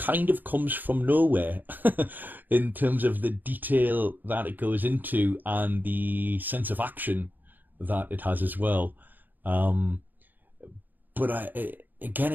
of comes from nowhere in terms of the detail that it goes into and the sense of action that it has as well. But again,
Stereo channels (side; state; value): left; late; 0.087 ms